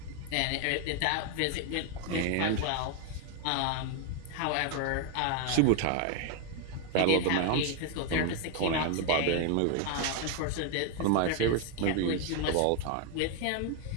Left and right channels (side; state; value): both; different; correlation 0.01